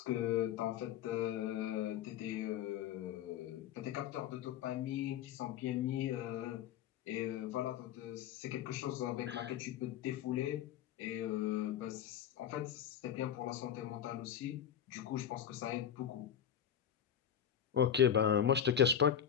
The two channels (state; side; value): quieter; right; 9.4 dB